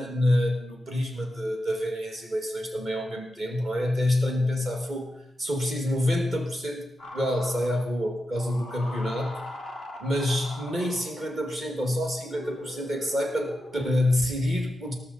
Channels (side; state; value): both; normal; correlation 0.89